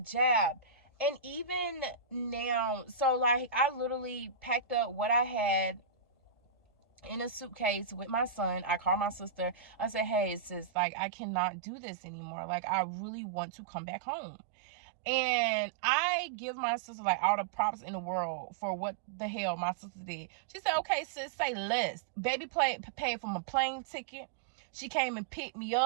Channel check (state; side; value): drops out; left; at 10.7 s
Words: And even now, so like, I literally packed up what I had in a suitcase with my son. I called my sister. I said, hey, sis, like, I cannot do this anymore. Like, I really want to come back home. And I give my sister like all the props in the world for what the hell my sister did. She said, okay, sis, say less. Baby paid for my plane ticket. She came and picked me